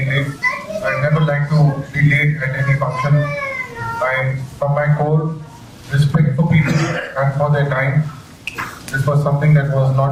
late. I never like to be late at any function. I, from my core, respect for people and for their time. This was something that was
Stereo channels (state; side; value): identical; both; correlation 1.00